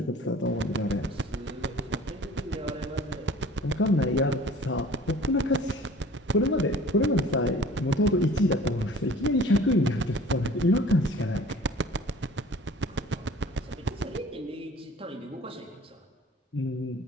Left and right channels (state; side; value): normal; both; correlation 0.47